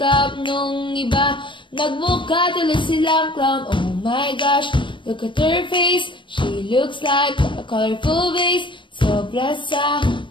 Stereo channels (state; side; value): late; right; 0.24 ms